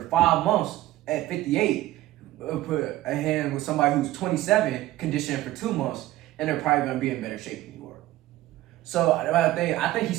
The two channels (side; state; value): left; quieter; 15.7 dB